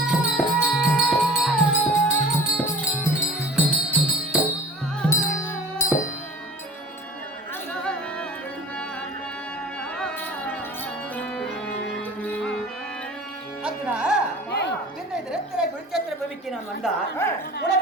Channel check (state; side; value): normal; both; correlation 0.41